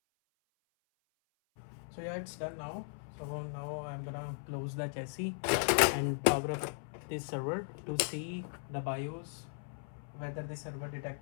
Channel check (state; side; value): silent; right; 53 dB below the other